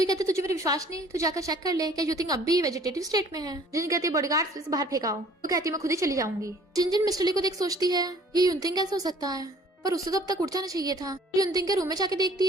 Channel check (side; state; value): both; normal; correlation 0.54